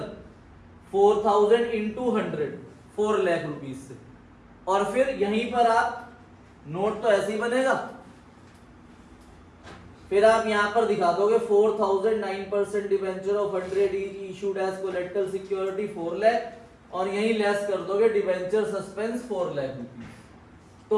4000 into 100 4 lakh rupees से। और फिर यहीं पर आप नोट तो ऐसे ही बनेगा, फिर आप यहां पर दिखा दोगे 4009% debenture of 100 issued as collateral security 4 lakh और यहीं लेस कर दोगे डिवेंचर सस्पेंस 4 लाख रुपीस,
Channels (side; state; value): both; identical; correlation 1.00